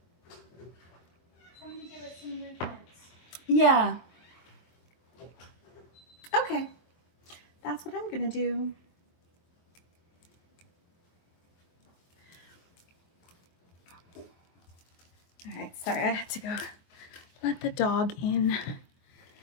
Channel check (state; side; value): late; right; 23 ms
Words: Somebody give us some movement. Yeah. Okay. That's what I'm gonna do. All right, sorry, I had to go let the dog in.